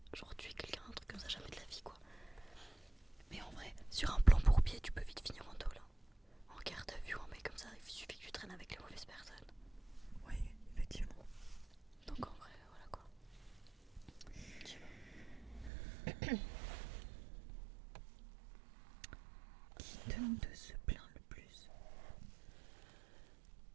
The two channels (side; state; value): left; drops out; at 15.7 s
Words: Genre tuer quelqu'un, un truc comme ça, jamais de la vie quoi. Mais en vrai, sur un plan bourbier, tu peux vite finir en tôle. En garde à vue, un mec comme ça, il suffit que tu traînes avec les mauvaises personnes. Oui, effectivement. Donc en vrai, voilà quoi. Je sais pas. Qui de nous deux se plaint le plus?